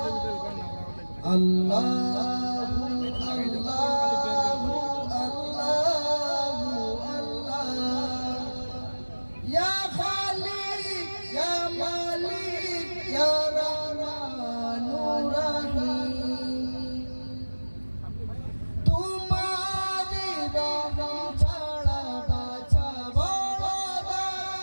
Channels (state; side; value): inverted; both; correlation -1.00